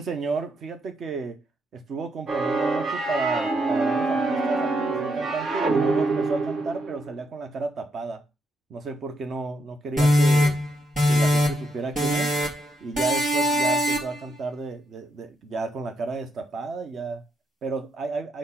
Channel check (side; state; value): both; normal; correlation 0.78